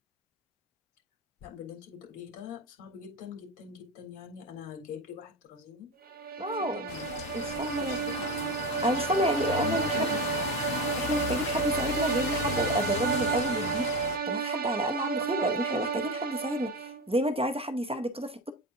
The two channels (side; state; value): both; normal; correlation 0.22